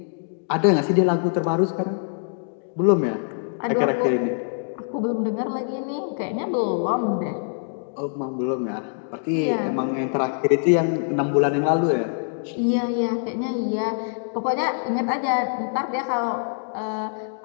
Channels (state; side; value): silent; right; digital silence